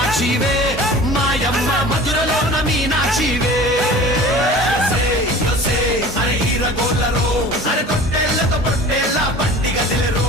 మాయమ్మ మధురలోన మీనాక్షివే అరే హీరగోళ్ళరో అరే తొట్టెళ్ళతో పొట్టెళ్ళ పండిగ తెలిరో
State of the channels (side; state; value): both; normal; correlation 0.41